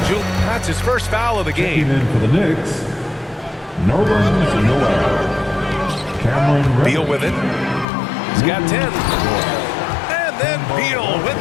That's his first foul of the Checking game. in for the Knicks, Nerlens Noel. Cameron Beal Reddish. with it. He's got 10. And then Beal with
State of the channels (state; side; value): drops out; right; at 7.9 s